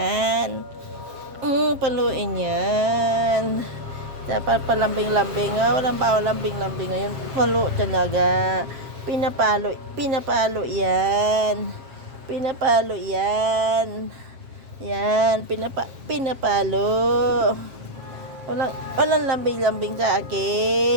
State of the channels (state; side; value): late; left; 7.4 ms